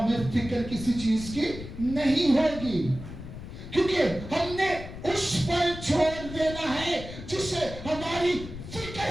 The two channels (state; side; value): noise; left; rumble, 11 dB below the sound